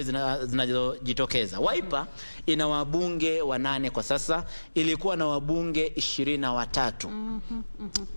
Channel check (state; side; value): inverted; both; correlation -1.00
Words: zinazojitokeza. Wiper ina wabunge 8 kwa sasa, ilikuwa na wabunge